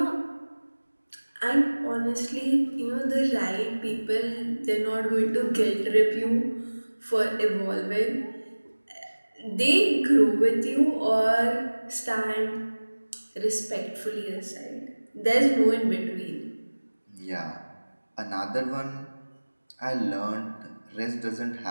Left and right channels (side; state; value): both; inverted; correlation -1.00